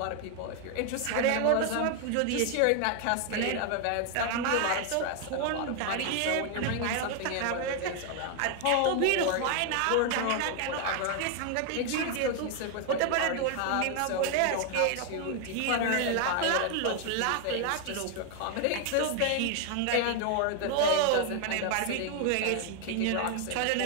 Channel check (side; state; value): both; different; correlation 0.00